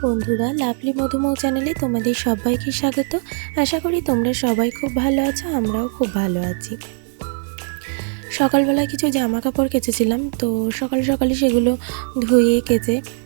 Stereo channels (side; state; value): left; silent; 66 dB below the other